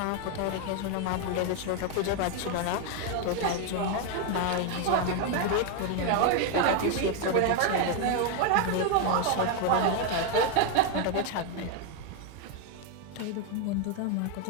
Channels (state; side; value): different; both; correlation 0.01